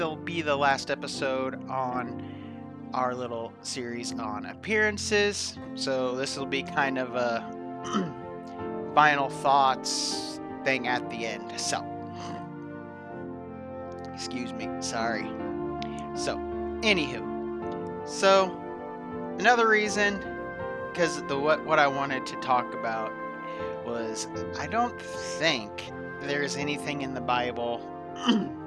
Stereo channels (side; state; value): both; identical; correlation 1.00